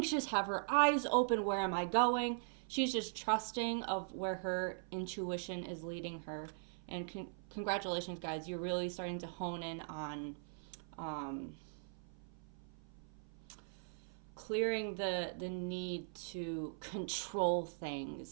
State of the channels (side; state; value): left; silent; 51 dB below the other